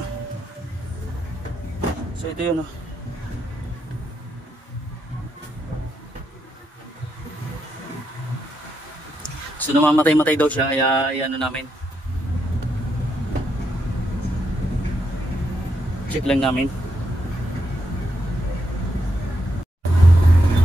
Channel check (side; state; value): both; normal; correlation 0.81